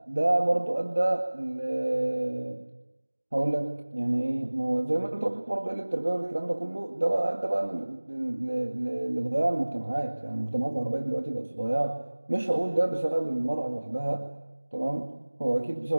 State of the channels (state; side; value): inverted; both; correlation -1.00